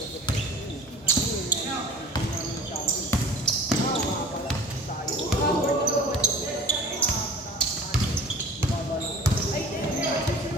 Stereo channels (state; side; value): normal; both; correlation 0.43